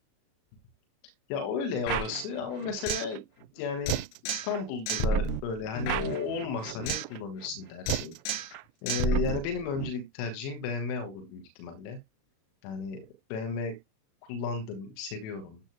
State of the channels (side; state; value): right; late; 36 ms